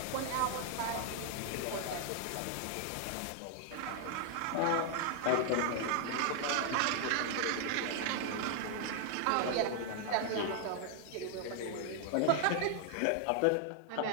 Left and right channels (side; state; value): both; different; correlation 0.00